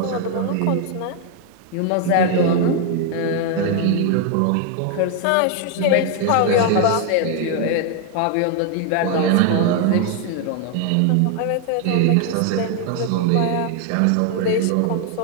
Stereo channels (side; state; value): both; different; correlation 0.00